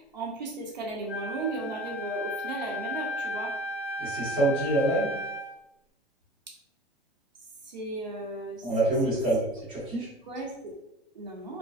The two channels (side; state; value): both; normal; correlation 0.41